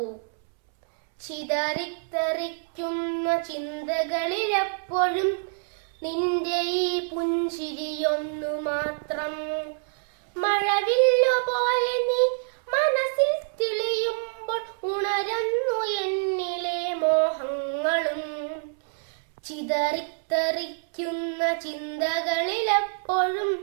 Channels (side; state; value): left; silent; 61 dB below the other